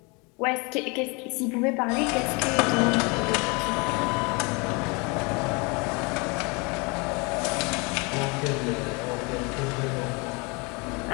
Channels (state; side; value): quieter; right; 29.5 dB